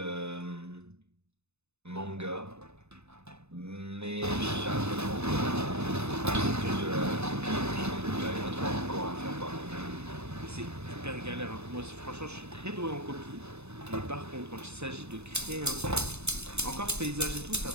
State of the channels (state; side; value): late; left; 0.81 ms